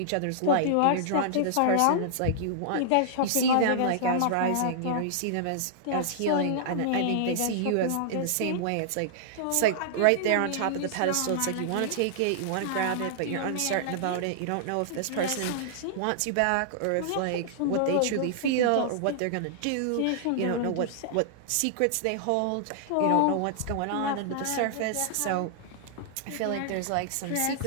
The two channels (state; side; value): different; both; correlation -0.01